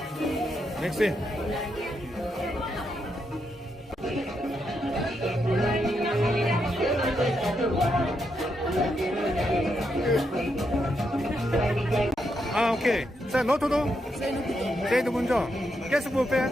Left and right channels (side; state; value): both; normal; correlation 0.81